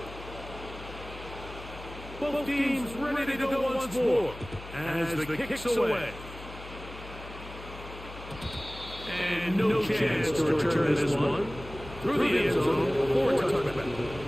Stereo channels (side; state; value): left; noise; hum, 14 dB below the sound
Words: Both teams ready to go once more as the kick's away. And no chance to return this one. Through the end zone for a touchback.